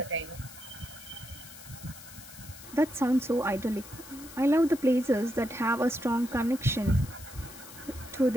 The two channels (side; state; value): left; noise; hiss, 16 dB below the sound